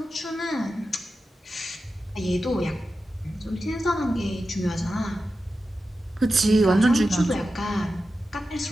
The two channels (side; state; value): both; normal; correlation 0.92